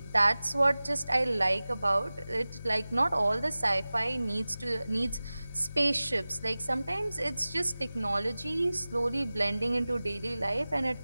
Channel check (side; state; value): both; inverted; correlation -0.97